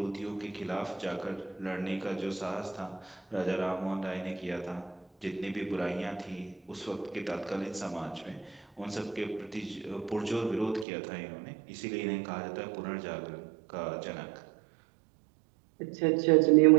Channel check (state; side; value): drops out; left; at 10.9 s